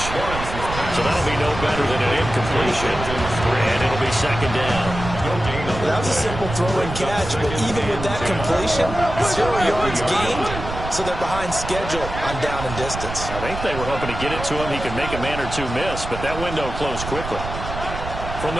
So that'll be no better than an incompletion. And it'll be second down. That was a simple throw and catch, but even with that completion, 0 yards gained, so they're behind schedule on down and distance. I think they were hoping to get it to him. He could make a man or two miss, but that window closed quickly.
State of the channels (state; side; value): noise; right; rumble, 8 dB below the sound